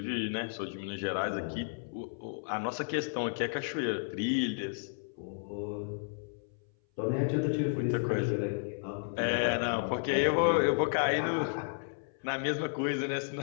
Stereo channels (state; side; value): silent; right; 55 dB below the other